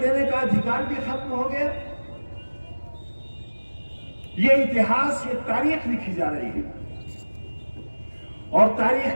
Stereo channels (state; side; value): inverted; both; correlation -1.00